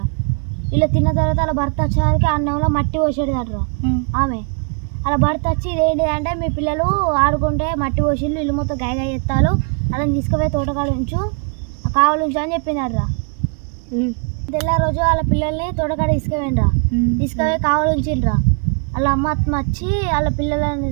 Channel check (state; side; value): quieter; left; 38.9 dB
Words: వీళ్ళు తిన్న తర్వాత వాళ్ళ భర్త వచ్చేవారికి అన్నంలో మట్టి పోసేడదట్రా. ఆమె అలా భర్త వచ్చి ఇదేంటి అంటే, మీ పిల్లలు ఆడుకుంటే మట్టి పోసిళ్ళు, ఇల్లు మొత్తం గాయగా ఎత్తాలు, అలా తీసుకుపోయి తోటకాడ ఉంచు, కావాలుంచు అని చెప్పిందట్రా. తెల్ల రోజు వాళ్ళ పిల్లల్ని తోటకాడ తీసుకుపోయి కావాలుంచిండ్రా. వాళ్ళ అమ్మ వచ్చి వాళ్ళ పిల్లలని